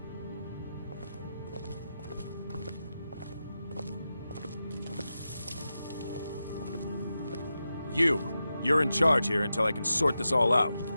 You're in charge here until I can sort this all out.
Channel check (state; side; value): inverted; both; correlation -0.90